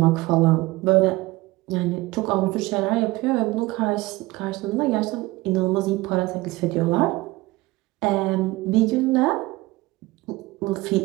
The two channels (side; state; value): left; quieter; 20.4 dB